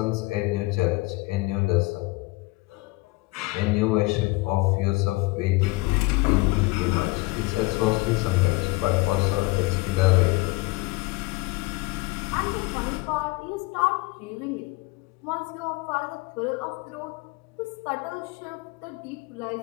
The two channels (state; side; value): quieter; right; 22.9 dB